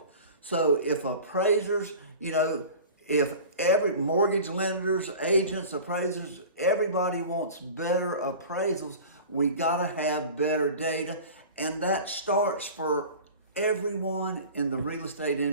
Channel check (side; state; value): both; inverted; correlation -0.38